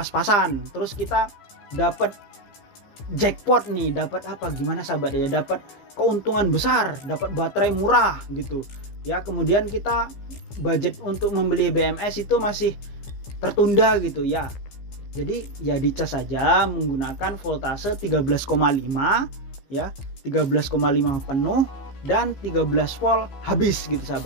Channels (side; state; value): right; late; 15 ms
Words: terus kita dapat jackpot nih, dapat apa gimana sahabat ya, dapat keuntungan besar, dapat baterai murah gitu ya, kemudian kita budget untuk membeli BMS itu masih tertunda gitu ya, jadi ya dicas saja menggunakan voltase 13,5 ya, 13,5 penuh dan 13 volt habis gitu